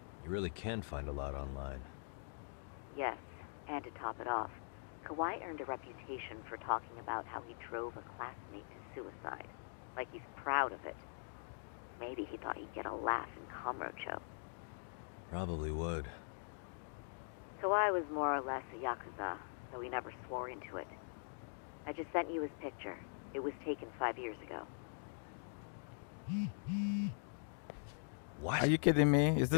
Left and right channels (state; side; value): silent; right; digital silence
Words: You really can find a lot online. Yes, and to top it off, Kawai earned a reputation for talking about how he drove a classmate to suicide, like he's proud of it. Maybe he thought he'd get a laugh in Kamurocho. Probably would. Kawai was more or less a Yakuza, though he never swore into it. I just sent you his picture. It was taken 5 years ago. What? Are you kidding me? Is